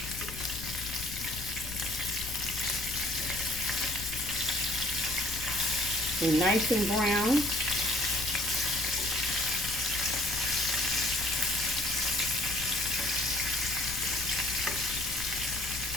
They're nice and brown.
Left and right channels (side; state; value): left; noise; rumble, 11 dB below the sound